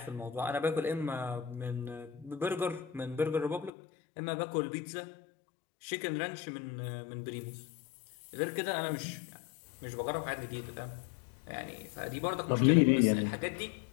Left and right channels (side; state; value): right; drops out; at 3.7 s